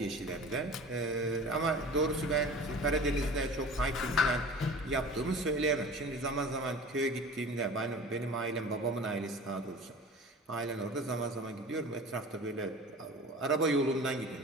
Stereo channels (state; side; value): normal; both; correlation 0.39